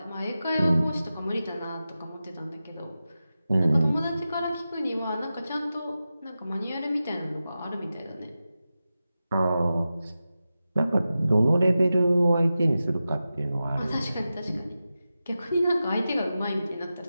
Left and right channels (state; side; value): inverted; both; correlation -0.93